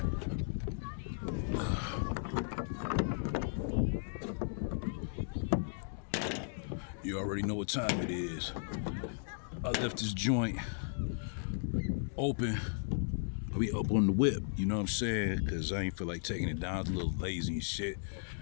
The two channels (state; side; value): silent; right; digital silence